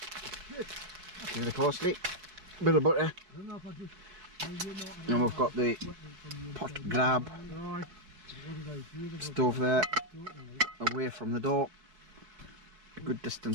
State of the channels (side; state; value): left; late; 4.6 ms